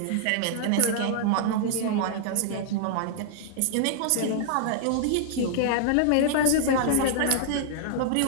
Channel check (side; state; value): both; different; correlation -0.01